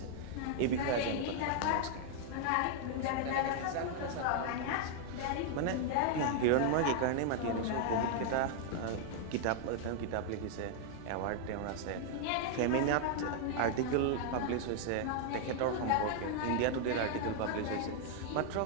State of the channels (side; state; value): both; different; correlation 0.00